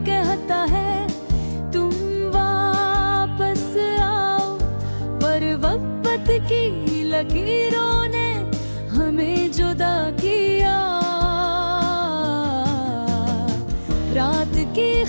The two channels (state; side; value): inverted; both; correlation -1.00